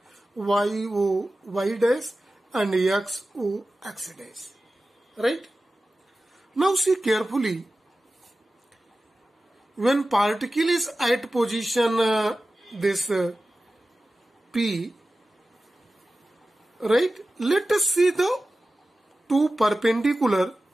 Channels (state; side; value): normal; both; correlation 0.95